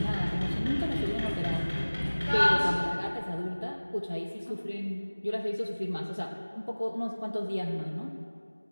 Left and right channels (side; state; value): both; inverted; correlation -1.00